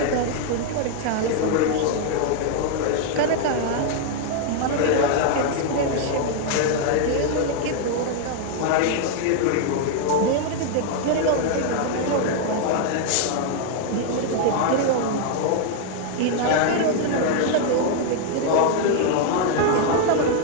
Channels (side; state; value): both; different; correlation 0.00